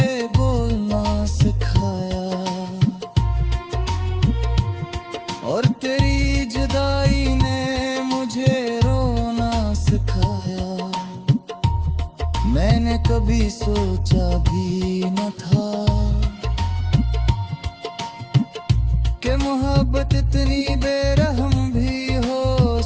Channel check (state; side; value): identical; both; correlation 1.00